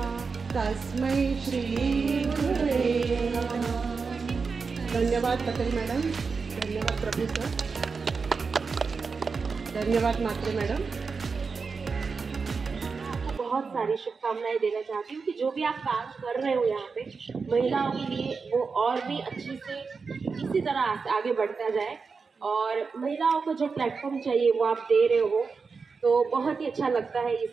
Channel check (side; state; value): left; quieter; 4.9 dB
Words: तस्मै श्री गुरुवे नमः। धन्यवाद पटेल मैडम, धन्यवाद प्रभु सर, धन्यवाद मात्रे मैडम। बहुत सारी शुभकामनाएं देना चाहती हूँ कि जो भी आप काम कर रहे हो यहाँ पे महिलाओं के लिए, वो और भी अच्छी से इसी तरह आगे बढ़ता जाए, और महिलाओं को जो प्लेटफॉर्म चाहिए वो आप दे रहे हो, तो बहुत ही अच्छा लगता है ये